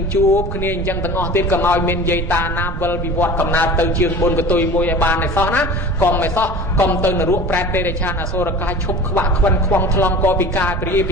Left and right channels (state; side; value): noise; right; rumble, 5 dB below the sound